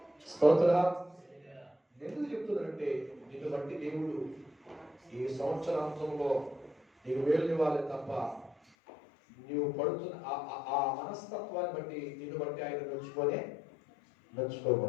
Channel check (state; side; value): drops out; right; at 8.6 s